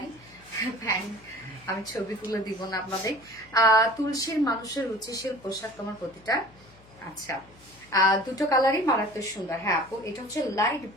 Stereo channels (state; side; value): noise; left; hum, 26 dB below the sound